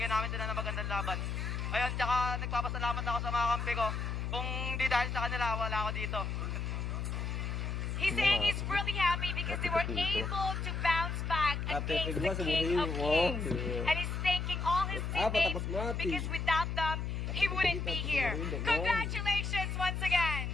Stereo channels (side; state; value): left; noise; hum, 2 dB below the sound